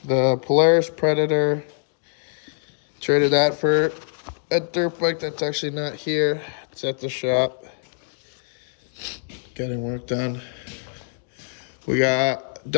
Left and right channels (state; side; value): silent; right; digital silence